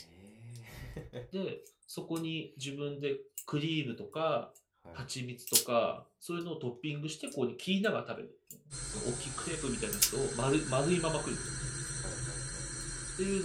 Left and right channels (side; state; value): both; identical; correlation 1.00